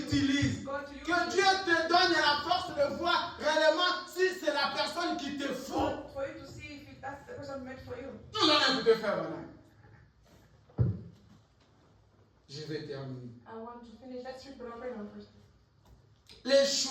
Que Dieu te donne la force de voir réellement si c'est la personne qui te faut. For you to see if that's the person meant for you. Nous allons écouter Frère Branham. Je vais terminer. I want to finish. Let's read Brother Branham first. Les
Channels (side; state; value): both; identical; correlation 1.00